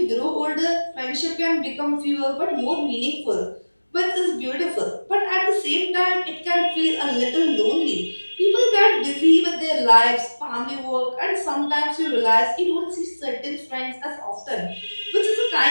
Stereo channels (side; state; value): both; inverted; correlation -1.00